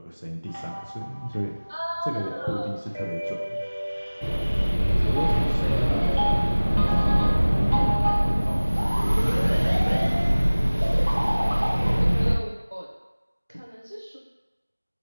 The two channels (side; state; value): both; inverted; correlation -1.00